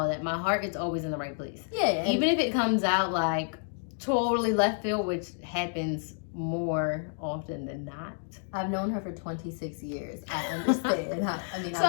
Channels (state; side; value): silent; right; 58 dB below the other